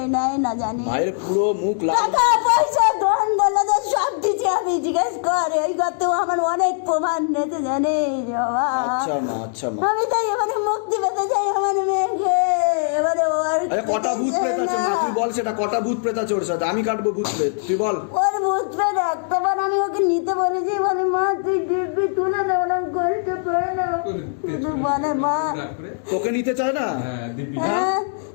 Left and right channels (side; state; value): right; silent; digital silence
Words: নেয় না জানি। মায়ের পুরো মুখ লাল। টাকা পয়সা ধন দৌলত সব দিচ্ছে, আমি জিজ্ঞেস করে এই করতেও আমার অনেক প্রমাণ নিতে জানিস বাবা। আচ্ছা মা, আচ্ছা মা। আমি তাই এবারে মুক্তি পেতে চাই আমার মেয়েকে। এবারে ওর কটা ভূত প্রেত আছে মা তুই বল সেটা, কটা ভূত প্রেত আছে ওর সাথে? আমি কাটবো ভূত প্রেত, তুই বল। ওর ভূত প্রেত একটাবার আমি ওকে নিতে বলেছি, বলে মা তুই দিব্যি তুলে না, ওরা কষ্ট করে না। শুধু বলে মা তোকে নিতে চায় না? হ্যাঁ